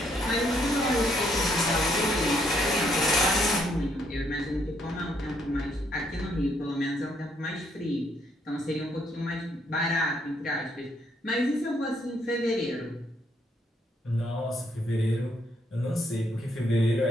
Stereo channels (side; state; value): both; normal; correlation 0.71